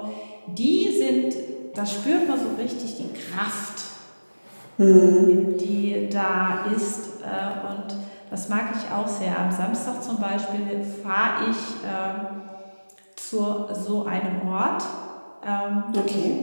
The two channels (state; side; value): inverted; both; correlation -1.00